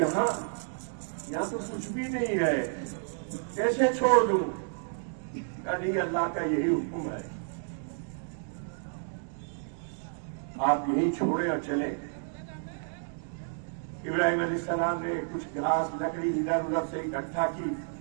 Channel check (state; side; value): silent; left; digital silence